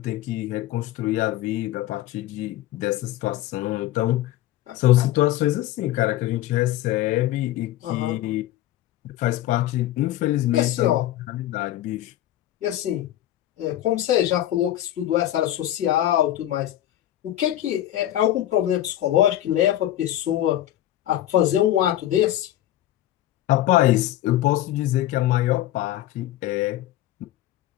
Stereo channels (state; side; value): quieter; right; 13.6 dB